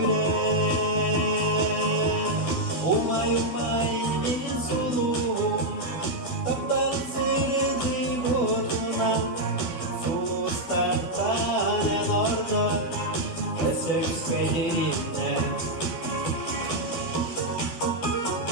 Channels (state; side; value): late; right; 12 ms